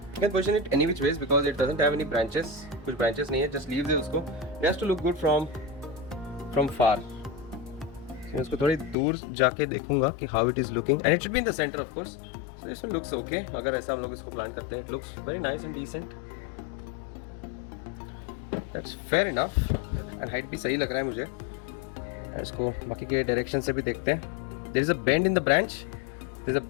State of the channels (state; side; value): drops out; right; at 9.0 s